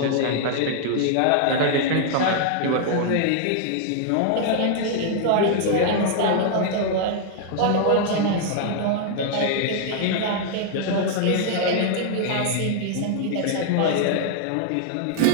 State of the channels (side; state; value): both; different; correlation 0.00